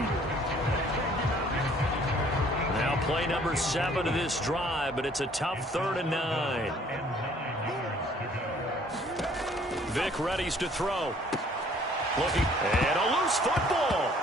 Now play number 7 of this drive, but it's a tough 3rd and 9. Vick readies to throw. Looking, and a loose football.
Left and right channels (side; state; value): both; normal; correlation 0.58